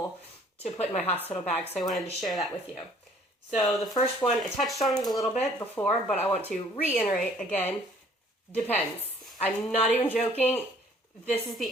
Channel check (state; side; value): normal; both; correlation 0.57